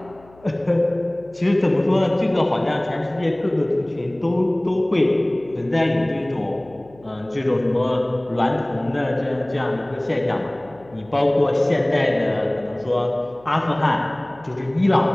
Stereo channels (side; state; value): left; noise; hum, 26 dB below the sound